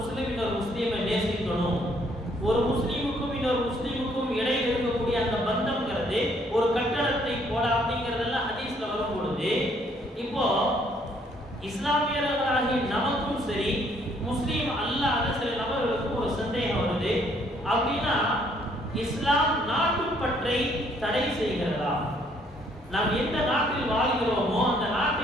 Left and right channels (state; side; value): normal; both; correlation 0.66